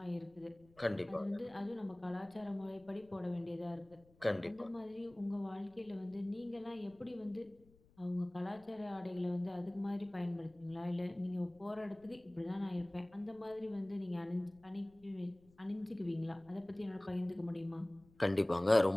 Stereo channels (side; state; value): left; noise; rumble, 28 dB below the sound